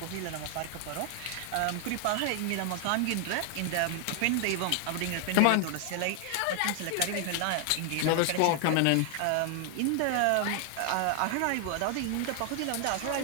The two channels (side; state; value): both; different; correlation 0.00